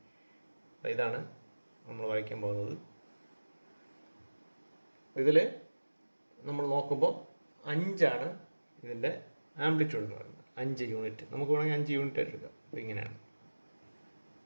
അപ്പോൾ ഇതാണ് നമ്മൾ വരയ്ക്കാൻ പോകുന്നത്. ഇതിൽ നമ്മൾ നോക്കുമ്പോൾ 5 ഇതിൻ്റെ ആംപ്ലിറ്റ്യൂഡ് എന്ന് പറയുന്നത്, 5 യൂണിറ്റ്. നമുക്ക് വേണമെങ്കിൽ 5 യൂണിറ്റ് ആയിട്ട് എടുക്കാം. അപ്പോൾ ഇങ്ങനെയാണ്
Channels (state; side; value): inverted; both; correlation -1.00